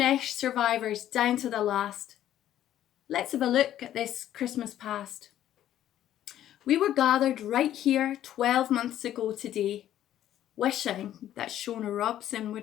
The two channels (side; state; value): right; quieter; 12.0 dB